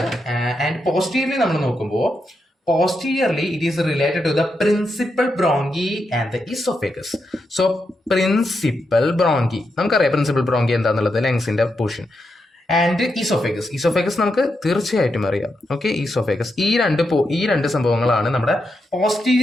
ആൻഡ് പോസ്റ്റീരിയർലി നമ്മൾ നോക്കുമ്പോൾ posteriorly it is related to the principal bronchi and the esophagus. So principal bronchi നമുക്കറിയാം പ്രിൻസിപ്പൽ ബ്രോങ്കി എന്താന്നുള്ളത്, ലങ്സിന്റെ പോർഷൻ. ആൻഡ് ഈസോഫേഗസ് നമുക്ക് തീർച്ചയായിട്ടും അറിയാം. ഓക്കെ, ഈസോഫേഗസ് ഈ രണ്ട് സംഭവങ്ങളാണ് നമ്മുടെ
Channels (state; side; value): normal; both; correlation 0.84